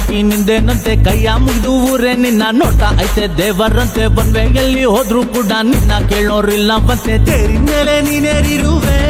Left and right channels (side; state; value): both; identical; correlation 1.00